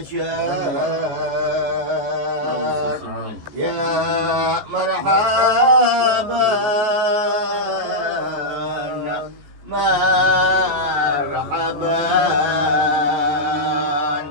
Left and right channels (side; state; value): left; late; 14 ms